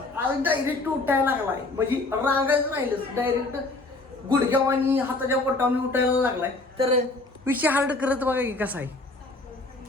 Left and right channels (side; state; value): right; quieter; 3.1 dB